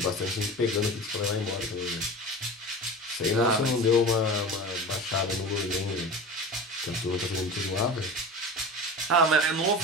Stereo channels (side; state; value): both; normal; correlation 0.32